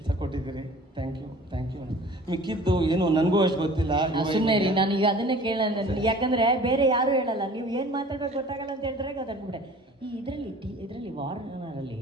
ಕೊಟ್ಟಿದ್ದೀರಿ. ಥ್ಯಾಂಕ್ ಯು ಅಣ್ಣ. ಮಿಕ್ಕಿದ್ದು ಏನು ನನಗೂ ಅಷ್ಟು ಗೊತ್ತಿಲ್ಲ. ಸುಮ್ಮನೆ ರೀ, ನಾನು ಈಗ ಅದನ್ನೇ ಕೇಳೋಣ. ಯಾಕಂದ್ರೆ ಬೇರೆ ಯಾರು ಹೇಳಲ್ಲ, ನೀವು ಏನು ಮಾತಾಡ್ಬೇಕು ಗೊತ್ತಾಗಲ್ಲ ಅಂತ ಹೇಳ್ತಾರೆ. ಅದನ್ಬಿಟ್ಟೆ ಈ ಇದರಲ್ಲಿ ವಾರ್ನರಲ್ಲಿ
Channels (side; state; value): both; normal; correlation 0.47